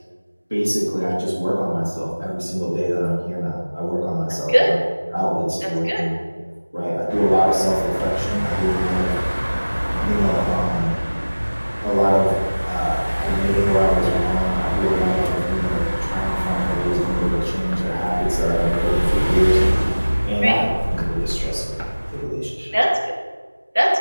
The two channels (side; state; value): both; inverted; correlation -1.00